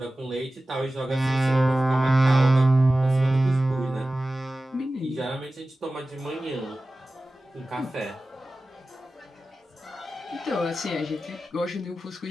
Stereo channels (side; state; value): both; normal; correlation 0.95